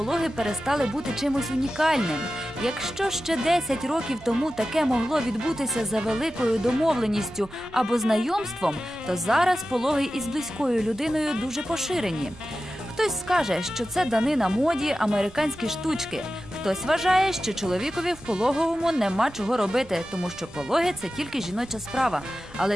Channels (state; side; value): noise; right; rumble, 21 dB below the sound